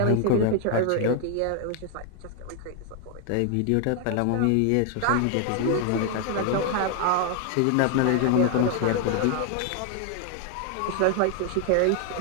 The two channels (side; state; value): both; different; correlation 0.00